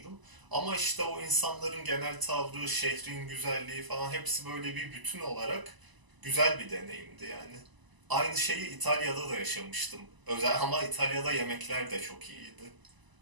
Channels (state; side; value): late; left; 1.0 ms